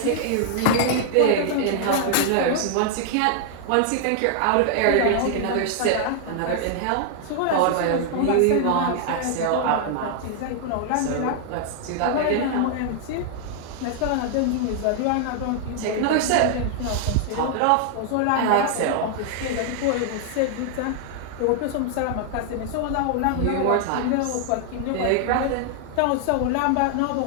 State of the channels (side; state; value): both; different; correlation 0.00